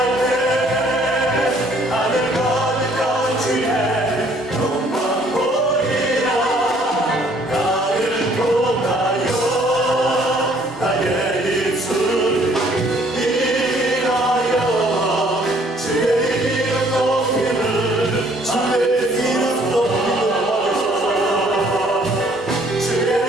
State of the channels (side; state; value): both; normal; correlation 0.61